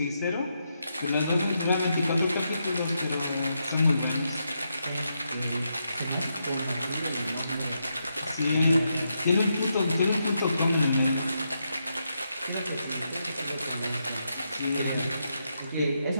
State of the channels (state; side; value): inverted; both; correlation -0.83